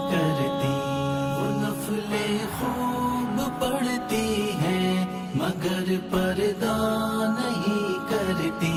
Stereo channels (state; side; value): identical; both; correlation 1.00